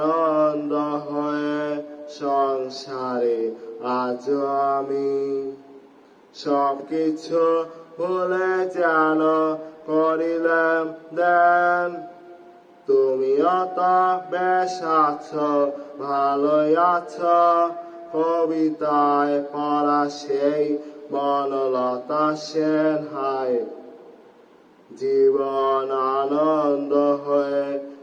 হয়ে সংসারে আছো আমি, সবকিছু ভুলে যেন করিলাম দেন। তুমিও তো বেশ আছো, ভালোই আছো, কবিতায় পড়া সেই বনলতা সেন হায়। জীবন আনন্দ হয়ে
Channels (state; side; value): identical; both; correlation 1.00